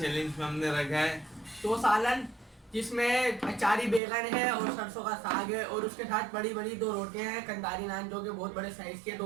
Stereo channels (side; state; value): left; drops out; at 4.0 s